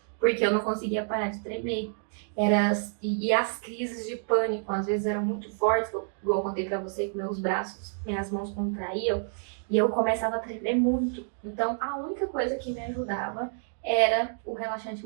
porque eu não conseguia parar de tremer. E as crises de pânico, às vezes, eram muito fortes, igual eu contei pra você, que meus braços, minhas mãos contraíam, e eu começava a tremer muito. Então, a única coisa que me ajudava era o relaxante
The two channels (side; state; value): left; silent; digital silence